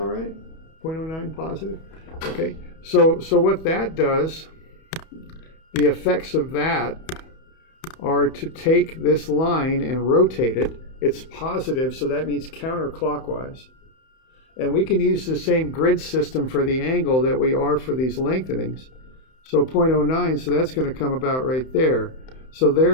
right? 0.09 positive? Okay, so what that does, the effects of that are to take this line and rotate it. It's positive, so that means counterclockwise. And we can use the same grid system for the angle that we are for these lengthenings. So 0.09, so that's going to come about right there. So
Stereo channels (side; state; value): right; late; 31 ms